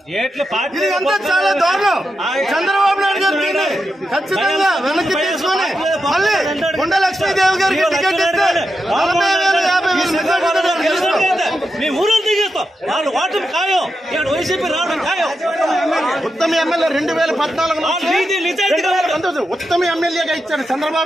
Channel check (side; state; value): both; normal; correlation 0.87